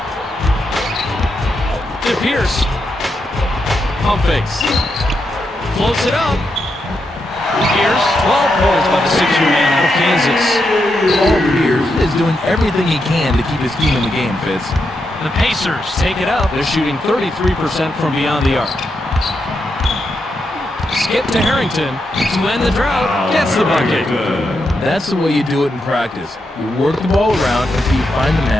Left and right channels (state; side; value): normal; both; correlation 0.84